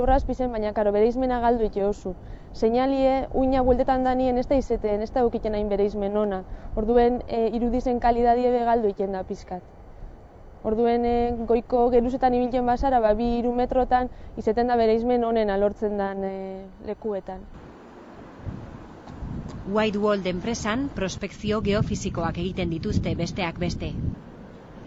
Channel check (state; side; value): identical; both; correlation 1.00